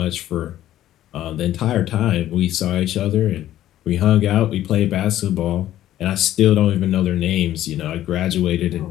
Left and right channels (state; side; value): quieter; right; 13.1 dB